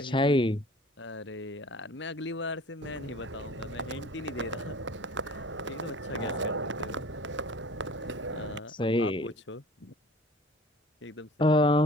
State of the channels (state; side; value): normal; both; correlation 0.46